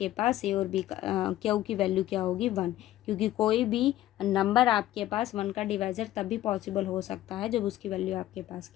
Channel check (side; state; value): right; quieter; 14.1 dB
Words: पास ए और B का Q की वैल्यू क्या होगी, 1। क्योंकि कोई भी नंबर आपके पास 1 का डिवाइज़र तभी पॉसिबल हो सकता है जब उसकी वैल्यू आपके पास